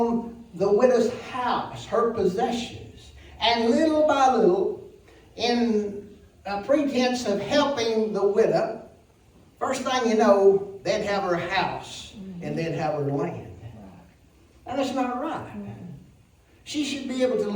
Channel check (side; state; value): both; identical; correlation 1.00